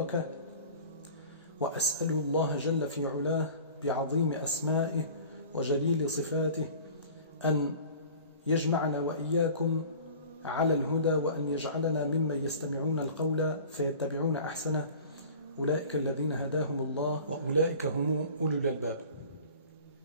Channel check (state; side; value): inverted; both; correlation -0.43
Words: وأسأل الله جل في علاه بعظيم أسمائه وجليل صفاته أن يجمعنا وإياكم على الهدى، وأن يجعلنا ممن يستمعون القول فيتبعون أحسنه، أولئك الذين هداهم الله وأولئك هم أولو الألباب.